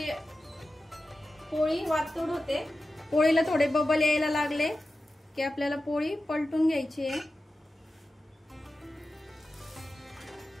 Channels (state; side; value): normal; both; correlation 0.93